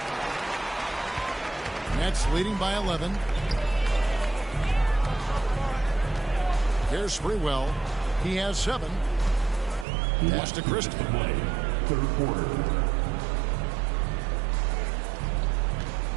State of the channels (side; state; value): left; drops out; at 9.9 s